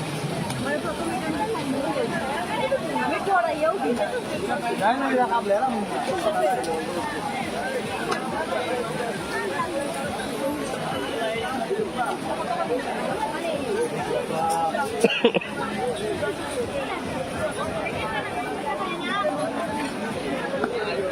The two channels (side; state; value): both; identical; correlation 1.00